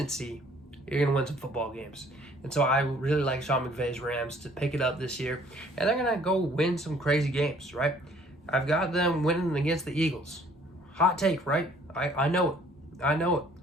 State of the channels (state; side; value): normal; both; correlation 0.58